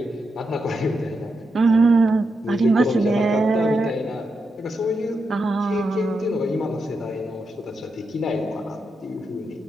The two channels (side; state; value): both; normal; correlation 0.85